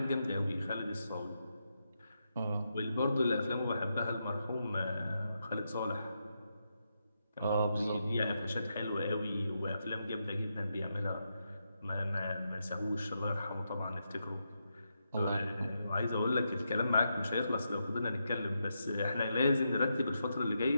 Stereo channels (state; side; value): inverted; both; correlation -0.84